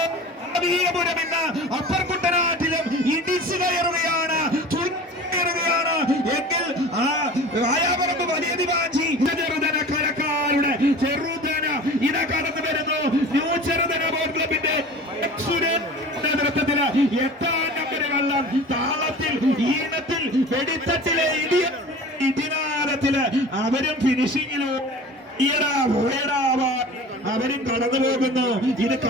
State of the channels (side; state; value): both; normal; correlation 0.39